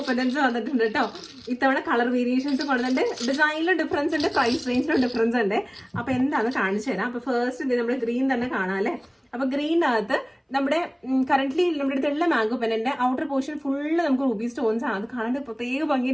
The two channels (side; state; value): both; identical; correlation 1.00